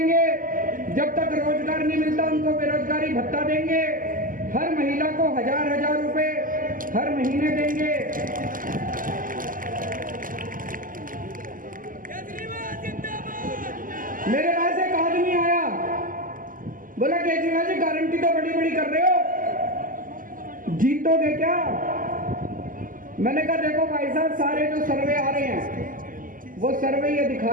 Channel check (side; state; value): left; late; 0.40 ms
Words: जब तक रोजगार नहीं मिलता उनको बेरोजगारी भत्ता देंगे। हर महिला को 1000 रुपए हर महीने देंगे। मेरे पास एक आदमी आया, बोला केजरीवाल जी गारंटी तो बड़ी बड़ी कर रहे हो, जीतोगे क्या? मैंने कहा देखो भाई साहब, सारे जो सर्वे आ रहे हैं वो सर्वे ये